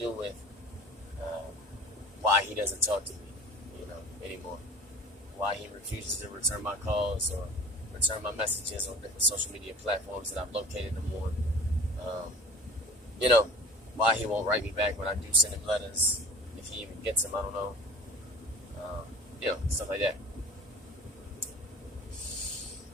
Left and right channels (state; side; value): normal; both; correlation 0.42